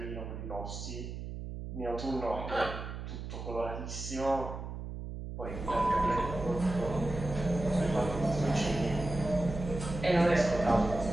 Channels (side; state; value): right; noise; hum, 8 dB below the sound